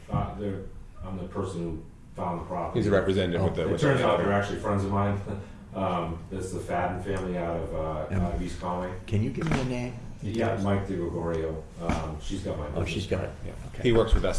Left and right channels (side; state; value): both; identical; correlation 1.00